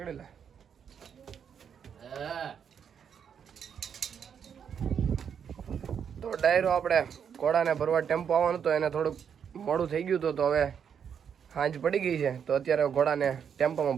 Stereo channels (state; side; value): quieter; left; 7.7 dB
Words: તો ડાયરો આપણે ઘોડાને ભરવા ટેમ્પો આવવાનું તો એને થોડુંક મોડું થઈ ગયું હતું. તો હવે સાંજ પડી ગઈ છે તો અત્યારે ઘોડાને